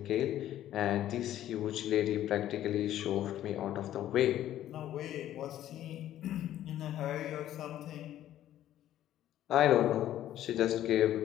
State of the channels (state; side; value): quieter; right; 12.4 dB